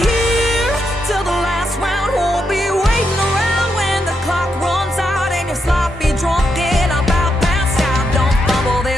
here till the last round. Won't be waiting around when the clock runs out and you're sloppy drunk and about passed out. Don't fumble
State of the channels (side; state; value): both; normal; correlation 0.82